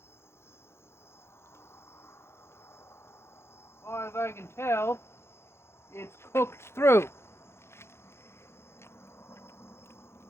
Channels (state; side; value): late; right; 0.12 ms